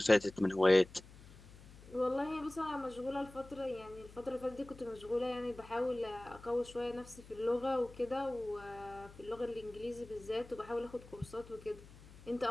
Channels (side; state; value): left; noise; hum, 19 dB below the sound